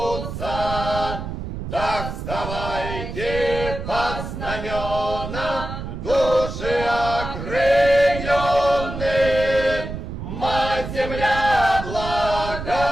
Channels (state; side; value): noise; right; rumble, 7 dB below the sound